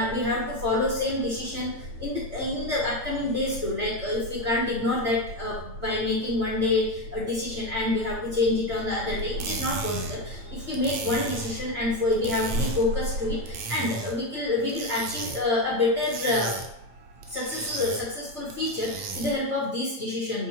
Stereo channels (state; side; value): late; left; 8.8 ms